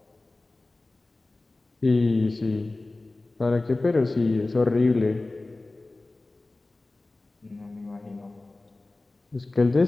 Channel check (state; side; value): quieter; right; 3.1 dB